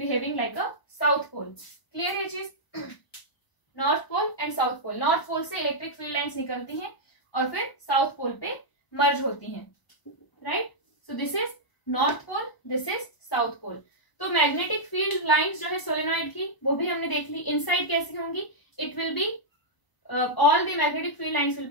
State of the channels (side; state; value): right; late; 1.0 ms